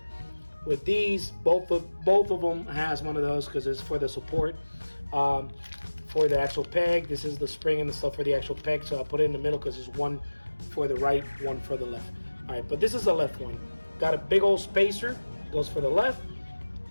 with these. Both of them has one of those because it's for the support. For the actual peg, this is the spring and the stuff for the actual peg, so I put it in the middle because there's one for the right, one for the left. All right, but this is the left one. Got a big old spacer, goes for the left.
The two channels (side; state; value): both; inverted; correlation -1.00